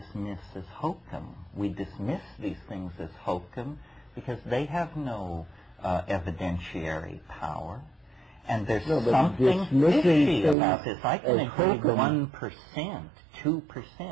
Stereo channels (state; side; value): drops out; left; at 10.6 s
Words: as hokum. We dismiss these things as hokum because they have no evidentiary power. And there's something fishy about this. I can agree 1%,